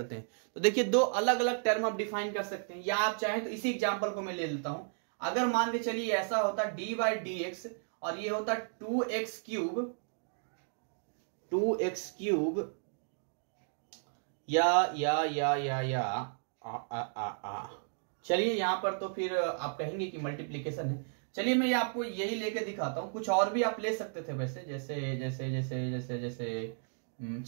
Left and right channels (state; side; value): silent; left; digital silence